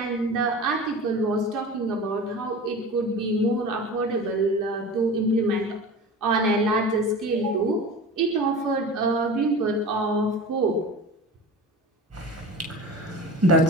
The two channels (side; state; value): both; normal; correlation 0.34